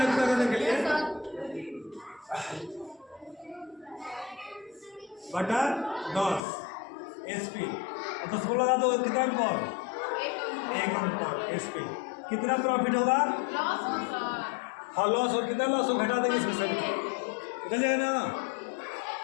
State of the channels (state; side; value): drops out; right; at 6.4 s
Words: पूरा करने के लिए बटा 10 एसपी 10 को लगा दो कितना अंक 1 अंक एसपी कितना प्रॉफिट होगा हाँ लॉस और कितना लॉस हो घटा देंगे इसमें से निकल जाएगा ना